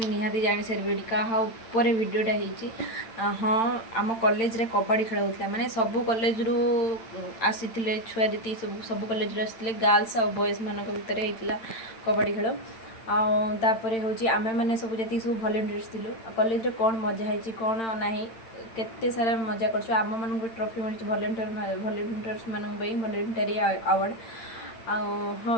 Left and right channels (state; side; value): late; right; 8.9 ms